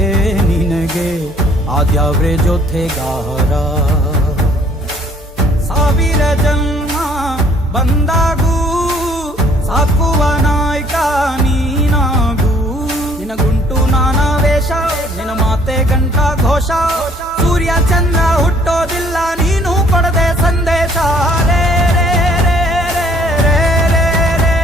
ನಿನಗೆ ಆದ್ಯಾವ್ರೆ ಜೊತೆಗಾರ. ಸಾವಿರ ಜನ್ಮ ಬಂದಾಗೂ ಸಾಕುವ ನಾಯಕ ನೀನಾಗೂ, ನಿನಗುಂಟು ನಾನಾ ವೇಷ ನಿನ ಮಾತೆ ಗಂಟ ಘೋಷ, ಸೂರ್ಯ ಚಂದ್ರ ಹುಟ್ಟೋದಿಲ್ಲ ನೀನು ಕೊಡದೆ ಸಂದೇಶ. ರೇ ರೇ ರೇ ರೇ ರೇ ರೇ ರೇ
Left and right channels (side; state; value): both; normal; correlation 0.60